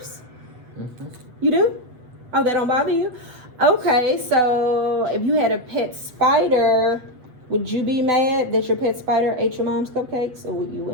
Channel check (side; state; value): left; late; 8.0 ms